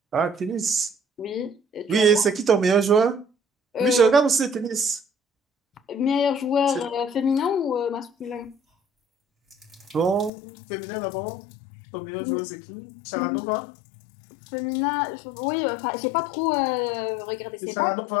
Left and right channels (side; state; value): right; drops out; at 10.3 s